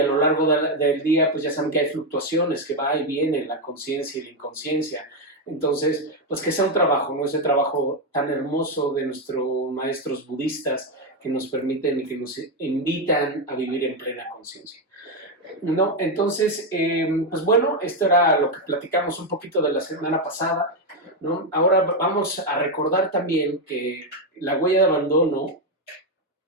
lo largo del día, pues ya saben que hay fluctuaciones, que va y viene la conciencia y la inconsciencia. Entonces, pues que sea un trabajo, ¿no? Ese trabajo tan hermoso de nuestros maestros budistas que nos permiten y que nos invitan a vivir en plena conciencia. No, entonces, pues bueno, esto era lo que platicamos un poquito de la semana pasada, ¿no? Ahora vamos a recordar también que la huella de abandono,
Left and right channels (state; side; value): normal; both; correlation 0.05